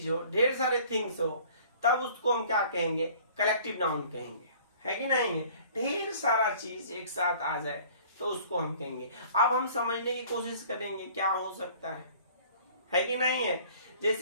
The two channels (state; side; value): inverted; both; correlation -0.51